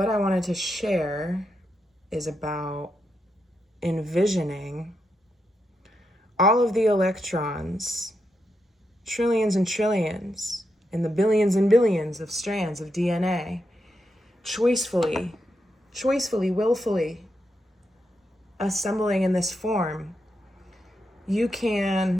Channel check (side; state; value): both; normal; correlation 0.84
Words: I wanted to share is about envisioning all of the electrons, trillions and trillions, in the billions and billions of strands of DNA, choicefully, willfully assembling in this form. You